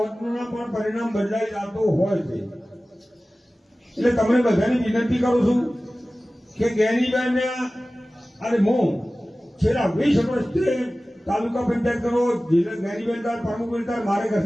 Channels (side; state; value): both; normal; correlation 0.97